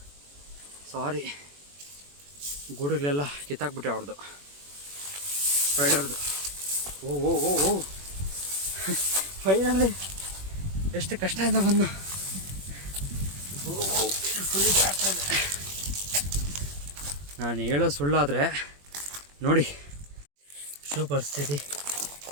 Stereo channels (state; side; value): late; left; 21 ms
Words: ಸಾರಿ ಗೂಡುಗಳೆಲ್ಲ ಕಿತ್ತಾಕ್ಬಿಟ್ಟೆ ಅವ್ರದ್ದು, ಸ್ಪೈಡರ್ದು. ಓ ಓ ಓ ಓ ಫೈನಲಿ ಎಷ್ಟು ಕಷ್ಟದಿಂದ ಬಂದು ಫುಲ್ ಜಾಡ್ತಾ ಇದೆ. ನಾನು ಹೇಳೋ ಸುಳ್ಳಾದರೆ ನೋಡಿ ಶೂ ಪರಿಸ್ಥಿತಿ.